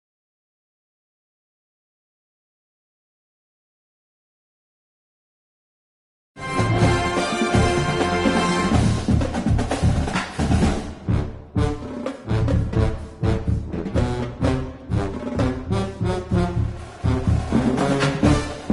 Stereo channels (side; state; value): both; identical; correlation 1.00